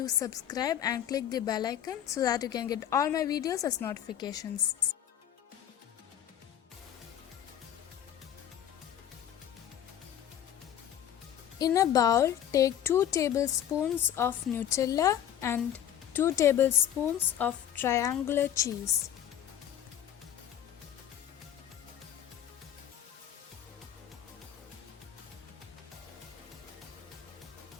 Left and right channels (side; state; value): right; quieter; 10.4 dB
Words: subscribe and click the bell icon so that you can get all my videos as notifications. In a bowl, take 2 tablespoons of Nutella and 2 tablespoons of triangular cheese.